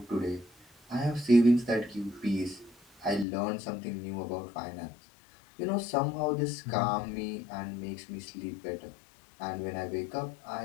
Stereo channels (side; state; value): right; drops out; at 3.2 s